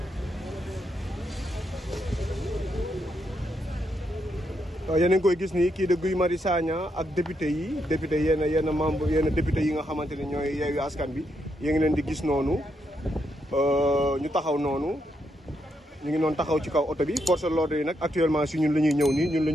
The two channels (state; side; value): normal; both; correlation 0.80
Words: yéen a ngi koy gis nii kii de Guy Marius Sagna ak député yi yenn membre yenn député yi nga xamante ne ñooy Yewwi Askan Wi yéen ngi leen di gis noonu ñu taxaw noonu ñu ngi noonu taxaw ci kaw oto bi force de l'ordre yi nag actuellement si ñun la ñuy ñëw nii ñun la